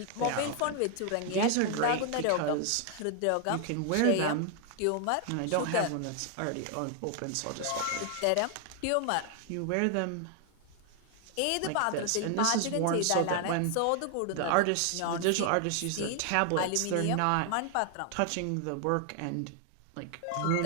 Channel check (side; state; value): both; different; correlation 0.00